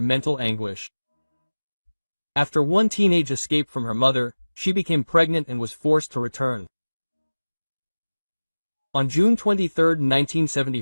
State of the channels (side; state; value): both; inverted; correlation -1.00